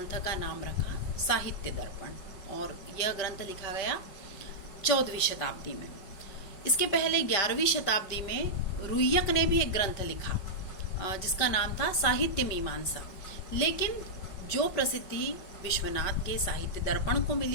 का नाम रखा साहित्य दर्पण, और यह ग्रंथ लिखा गया 14वीं शताब्दी में। इसके पहले 11वीं शताब्दी में रुय्यक ने भी एक ग्रंथ लिखा जिसका नाम था साहित्य मीमांसा, लेकिन जो प्रसिद्धि विश्वनाथ के साहित्य दर्पण को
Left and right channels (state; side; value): late; right; 5.2 ms